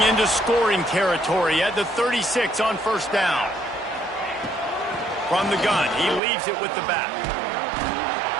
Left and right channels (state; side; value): drops out; left; at 6.2 s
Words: into scoring territory at the 36 on first down. From the gun, he leaves it with the back.